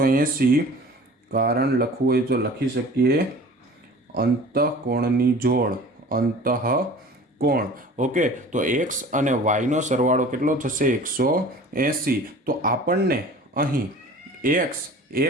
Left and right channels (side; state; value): both; normal; correlation 0.43